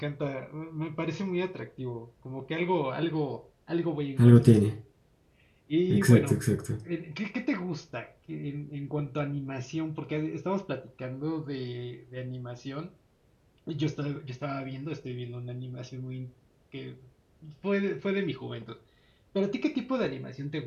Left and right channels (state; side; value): identical; both; correlation 1.00